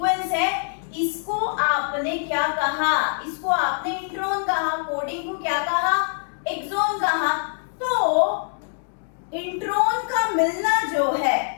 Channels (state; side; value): silent; right; digital silence